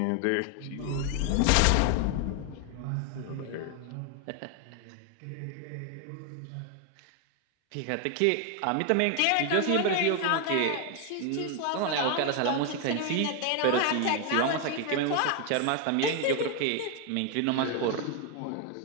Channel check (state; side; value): different; both; correlation 0.01